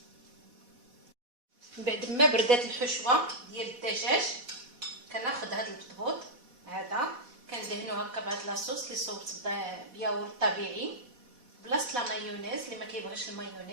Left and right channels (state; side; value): late; left; 4.1 ms